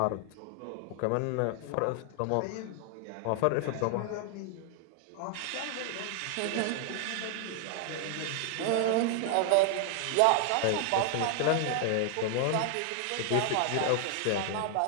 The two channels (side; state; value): both; different; correlation 0.00